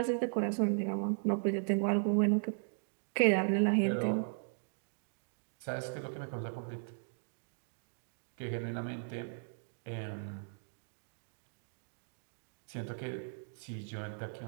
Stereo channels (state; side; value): silent; left; digital silence